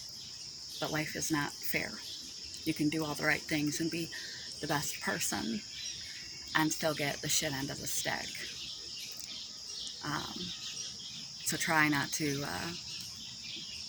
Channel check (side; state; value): both; identical; correlation 1.00